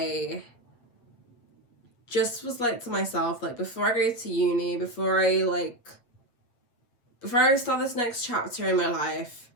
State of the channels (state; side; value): late; right; 8.3 ms